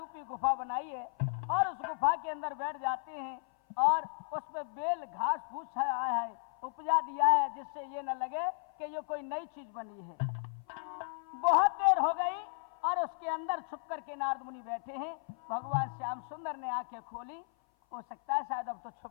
गुफा बनाई है और उस गुफा के अंदर बैठ जाते हैं और उस पे बेल घास फूस आया है उपजा दिया है जिससे ये न लगे कि ये कोई नई चीज बनी है बहुत देर हो गई और उसके अंदर छुप करके नारद मुनि बैठे हैं भगवान श्याम सुंदर ने आंखें खोली हो सकता है शायद अब तो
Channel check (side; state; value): right; silent; 55 dB below the other